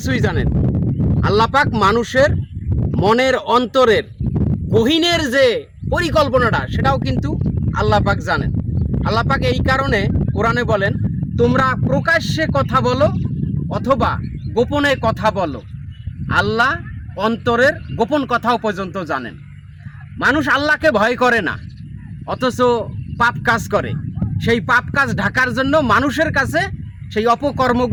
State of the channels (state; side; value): identical; both; correlation 1.00